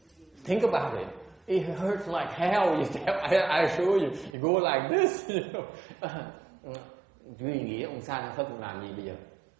Think about it. It hurts like hell. I assure you. You go like this. Duy nghĩa ông Sa Phật làm gì bây giờ?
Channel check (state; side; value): drops out; left; at 4.3 s